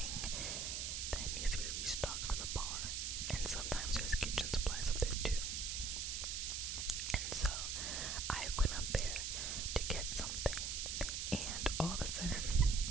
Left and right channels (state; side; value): noise; right; hiss, 1 dB below the sound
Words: that needs to be restocked for the bar. And sometimes there's kitchen supplies up there too. And so I went up there to get something, and all of a sudden,